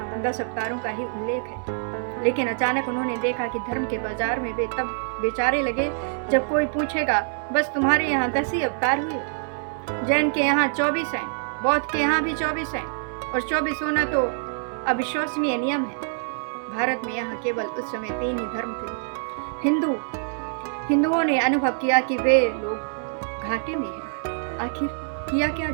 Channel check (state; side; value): silent; left; 60 dB below the other